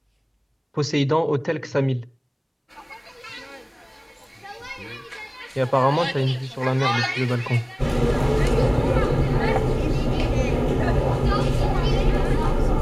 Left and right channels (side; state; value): both; identical; correlation 1.00